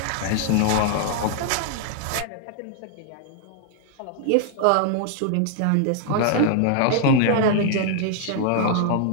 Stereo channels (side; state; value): both; different; correlation 0.00